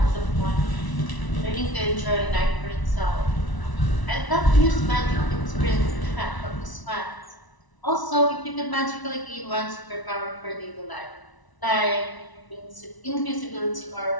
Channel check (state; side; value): late; right; 1.0 ms